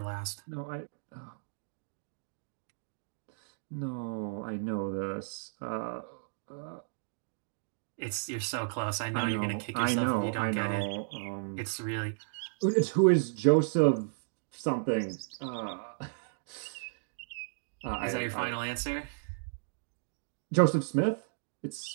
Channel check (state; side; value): silent; left; digital silence